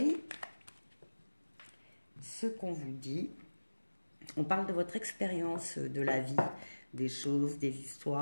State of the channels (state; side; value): inverted; both; correlation -1.00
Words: ce qu'on vous dit. On parle de votre expérience de la vie, des choses, des